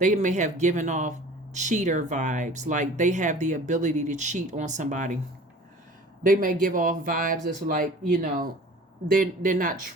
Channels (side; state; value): both; normal; correlation 0.44